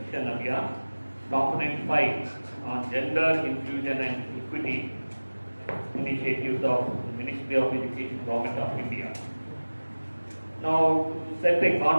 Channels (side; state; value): both; inverted; correlation -1.00